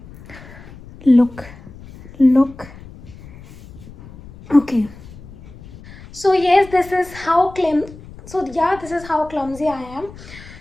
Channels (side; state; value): left; noise; rumble, 18 dB below the sound